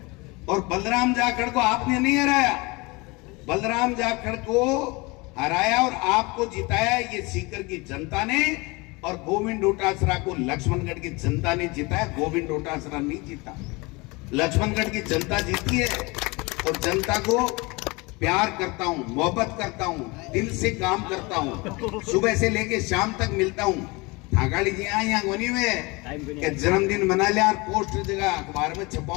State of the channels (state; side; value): quieter; right; 25.5 dB